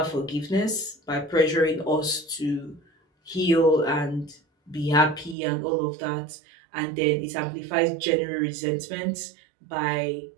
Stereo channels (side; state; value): left; drops out; at 5.4 s